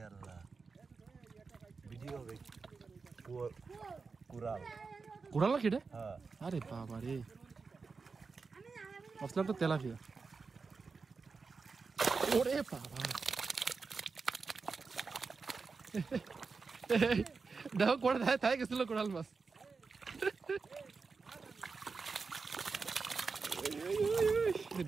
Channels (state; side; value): quieter; left; 4.7 dB